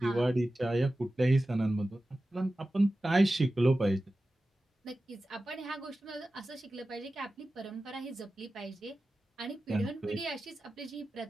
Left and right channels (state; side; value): normal; both; correlation 0.95